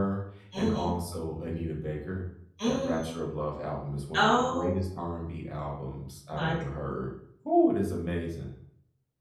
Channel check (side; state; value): both; identical; correlation 1.00